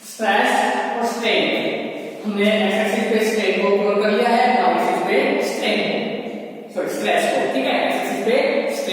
स्ट्रेस और स्ट्रेन, हमने एक्स एक्सिस पे स्ट्रेन को कवर कर लिया है, वाई एक्सिस पे स्ट्रेन सॉरी स्ट्रेस को। ठीक है, एक्स एक्सिस पे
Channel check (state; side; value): identical; both; correlation 1.00